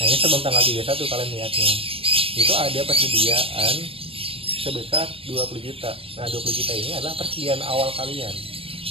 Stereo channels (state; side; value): late; left; 0.27 ms